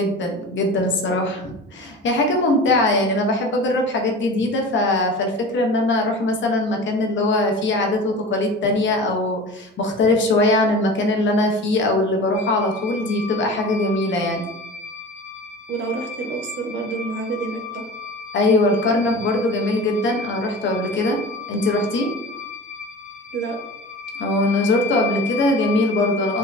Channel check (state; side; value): normal; both; correlation 0.36